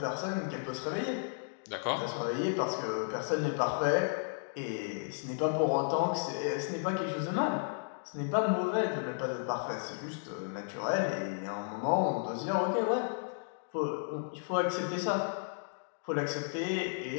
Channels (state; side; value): silent; right; digital silence